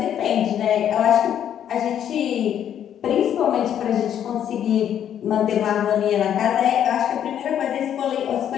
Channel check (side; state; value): right; quieter; 9.8 dB